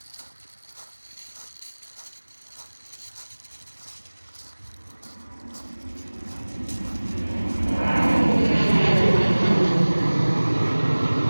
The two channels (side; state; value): both; inverted; correlation -1.00